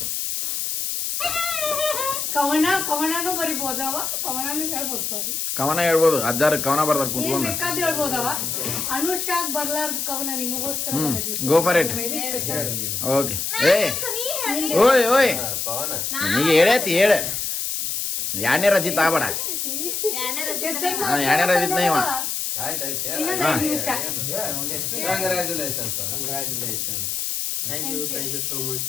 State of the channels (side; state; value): left; noise; hiss, 2 dB below the sound